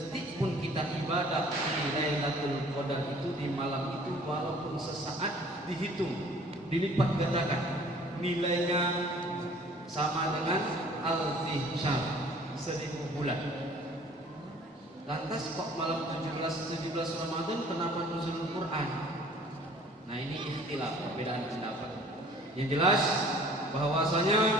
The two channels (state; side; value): normal; both; correlation 0.52